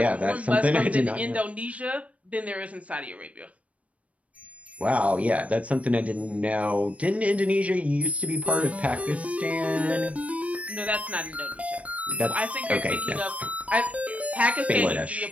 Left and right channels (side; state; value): left; late; 0.065 ms